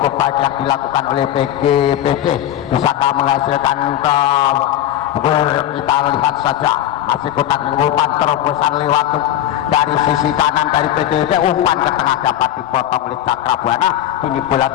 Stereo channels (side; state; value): right; quieter; 12.0 dB